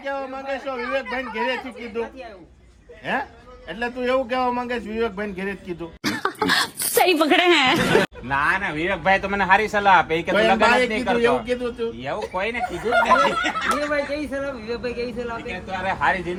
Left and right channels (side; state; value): both; identical; correlation 1.00